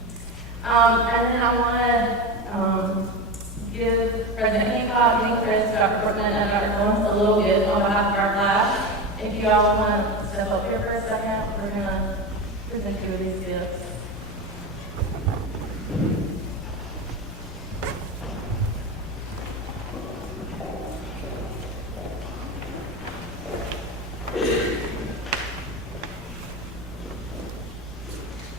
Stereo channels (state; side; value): normal; both; correlation 0.21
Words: And then I want to give President Hancock, Dean Chris, Dr. Portman, and Dr. Collins a little gift on behalf of our class. If you all want to step up here for a second, we're going to present you with these gifts.